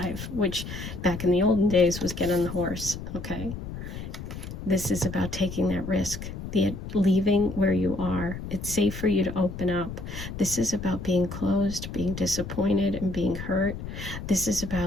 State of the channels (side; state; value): left; noise; rumble, 9 dB below the sound